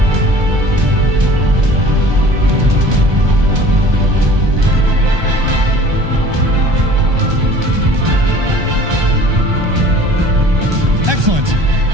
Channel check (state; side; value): late; left; 1.2 ms